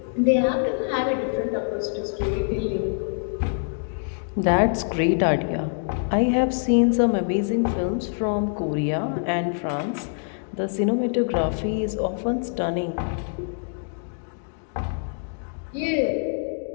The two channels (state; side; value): silent; right; digital silence